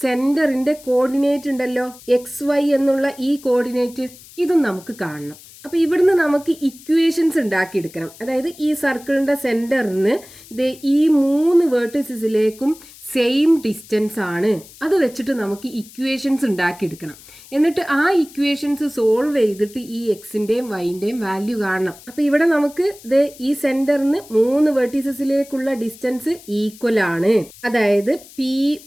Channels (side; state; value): left; noise; hiss, 21 dB below the sound